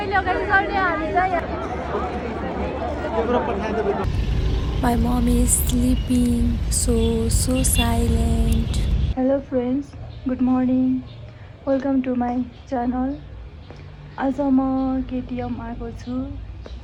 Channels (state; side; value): identical; both; correlation 1.00